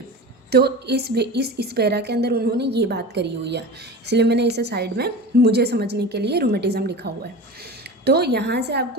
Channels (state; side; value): normal; both; correlation 0.31